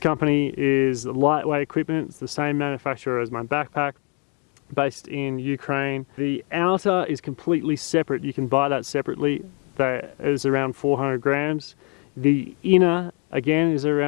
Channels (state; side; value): quieter; right; 30.9 dB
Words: is lightweight equipment. It's the same manufacturer as my backpack, based in Ukraine. The outer is completely separate. You can buy that separately. That is around 400 grams. The inner, again, is